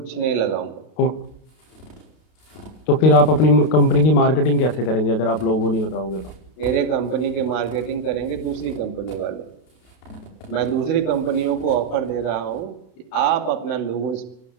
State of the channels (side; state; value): right; late; 32 ms